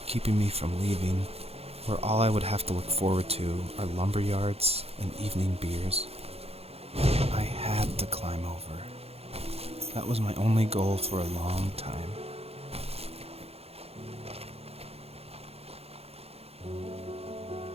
keeping me from leaving, where all I would have to look forward to are lumber yards and evening beers. I had to climb over. That was my only goal for a long time.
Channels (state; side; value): late; left; 0.29 ms